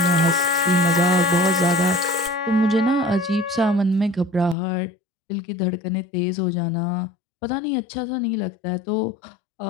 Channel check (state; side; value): drops out; right; at 4.5 s